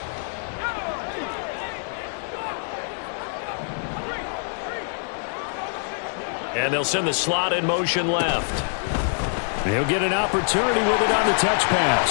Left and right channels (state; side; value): silent; right; 57 dB below the other